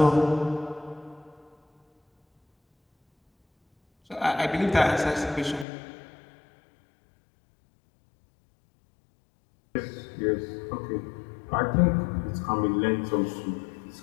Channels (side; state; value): right; drops out; at 5.7 s